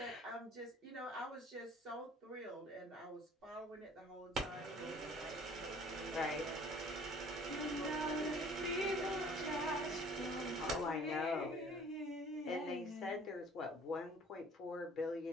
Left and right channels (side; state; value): both; normal; correlation 0.52